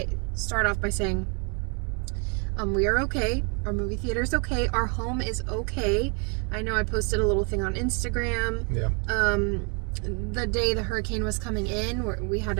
start off by saying, we are okay. Our movie theater's okay. Our home is okay. I know I posted a little thing on Instagram. Yeah. The day the hurricane was coming in, we had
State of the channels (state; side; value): quieter; left; 35.9 dB